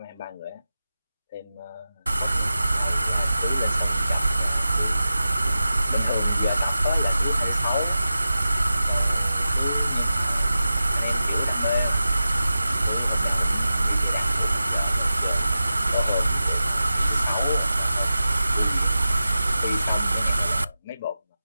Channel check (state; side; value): inverted; both; correlation -0.93